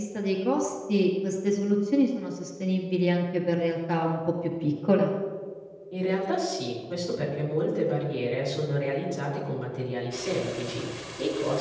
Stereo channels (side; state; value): both; identical; correlation 1.00